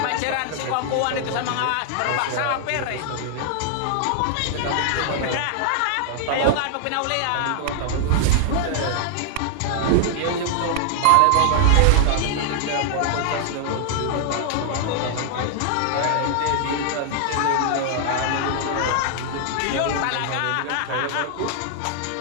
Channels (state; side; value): different; both; correlation 0.00